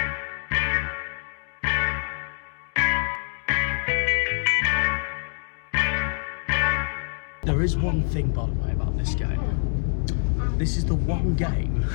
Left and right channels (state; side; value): silent; right; digital silence